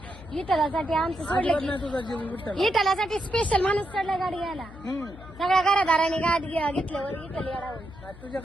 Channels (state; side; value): noise; left; hum, 17 dB below the sound